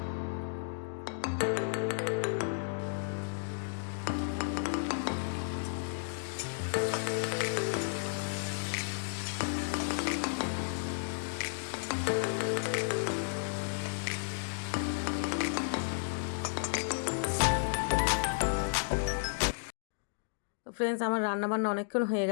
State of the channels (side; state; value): right; silent; digital silence